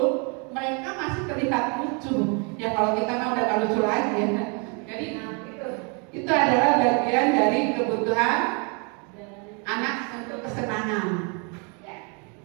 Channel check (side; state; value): left; quieter; 35.2 dB